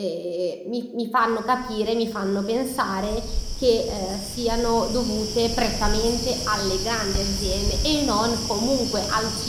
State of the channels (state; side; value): identical; both; correlation 1.00